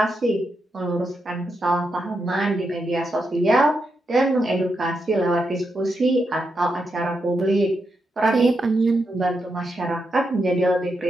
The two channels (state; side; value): normal; both; correlation 0.84